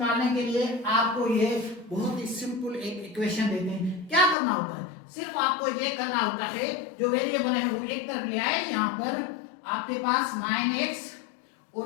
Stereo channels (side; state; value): right; drops out; at 4.4 s